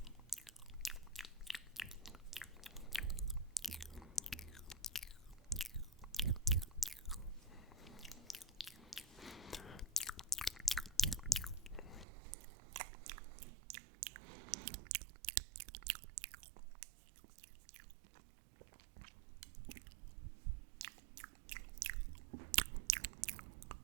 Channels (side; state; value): left; drops out; at 12.1 s